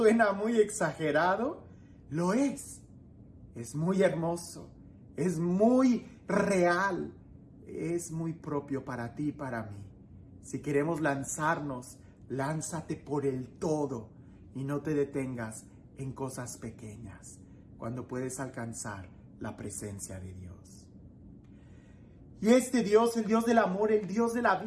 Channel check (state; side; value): identical; both; correlation 1.00